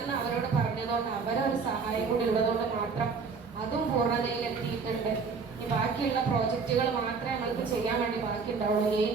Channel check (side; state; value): left; quieter; 5.0 dB